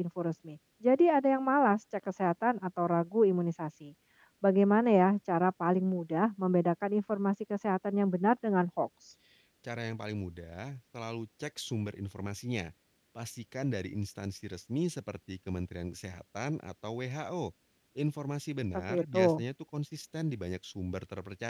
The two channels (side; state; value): both; identical; correlation 1.00